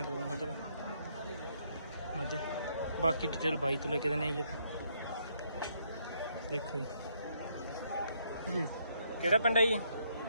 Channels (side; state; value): both; inverted; correlation -0.72